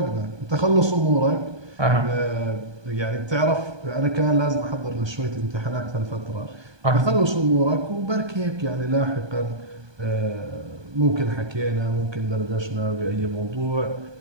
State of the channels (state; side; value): late; left; 1.2 ms